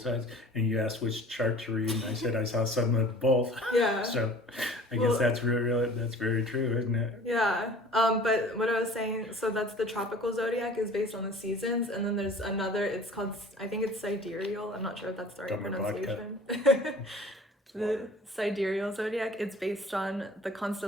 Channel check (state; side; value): normal; both; correlation 0.46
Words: and you asked which chart to read, and I said I saw some of both. Yeah. So I guess that's really that's very true, isn't it? Yeah. But what I was saying, so that's the tropical zodiac is based on the seasons, and then there's another. It's called, I think it's sidereal. I'm not sure if that's the right Dumber pronunciation. The sidereal zodiac. It's based on the